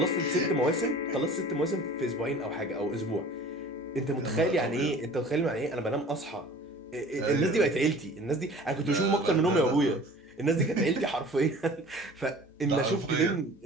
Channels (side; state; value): both; normal; correlation 0.45